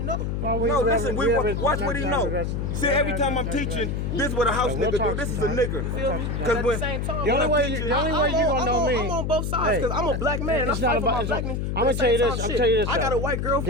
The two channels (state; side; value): noise; left; hum, 1 dB below the sound